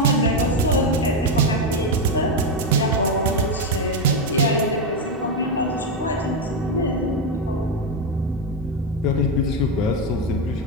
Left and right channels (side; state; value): both; normal; correlation 0.07